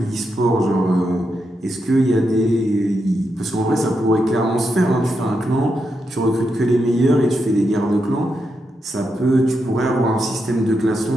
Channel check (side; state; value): both; normal; correlation 0.84